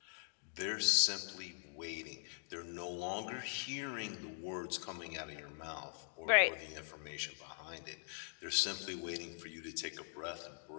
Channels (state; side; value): silent; right; digital silence